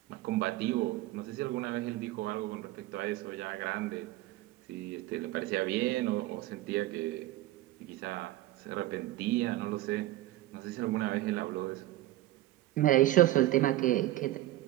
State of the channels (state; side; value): quieter; left; 15.9 dB